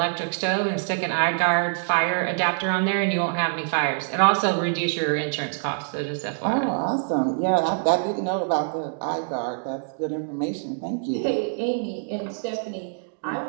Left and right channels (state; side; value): silent; left; digital silence